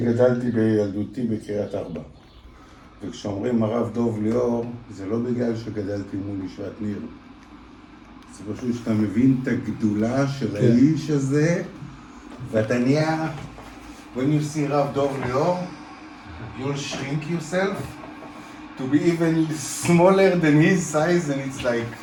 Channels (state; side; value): identical; both; correlation 1.00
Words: בילדותי בקריית ארבע. וכשאומרים הרב דוב ליאור, זה לא בגלל שגדלתי מול ישיבת ניר. זה פשוט שאתה מבין את הגדולה של האיש הזה, ואתה נהיה, when you see רב דוב ליאור, you'll shrink yourself to be even smaller than his size, and it's like,